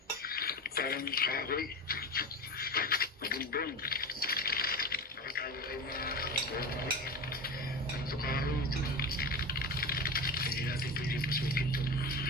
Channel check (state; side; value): normal; both; correlation 0.26